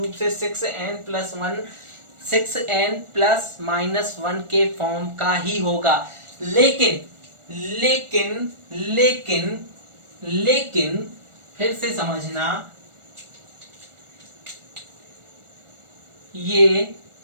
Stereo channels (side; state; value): left; late; 1.4 ms